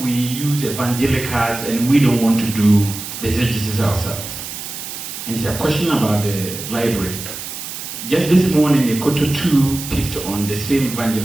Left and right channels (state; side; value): noise; right; hiss, 9 dB below the sound